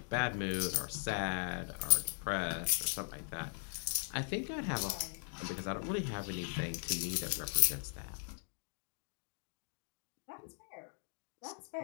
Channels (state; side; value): silent; right; 52 dB below the other